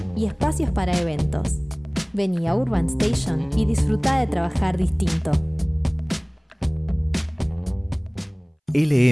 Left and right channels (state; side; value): identical; both; correlation 1.00